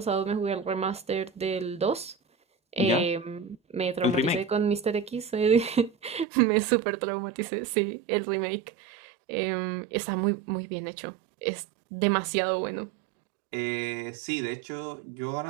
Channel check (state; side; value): drops out; left; at 6.2 s